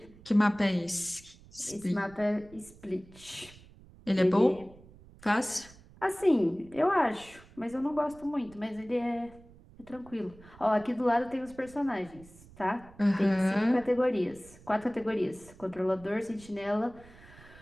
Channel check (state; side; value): noise; right; rumble, 22 dB below the sound